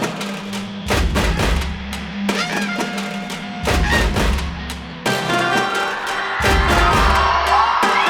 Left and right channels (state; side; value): identical; both; correlation 1.00